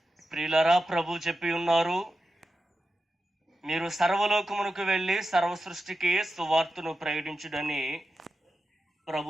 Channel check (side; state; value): both; normal; correlation 0.91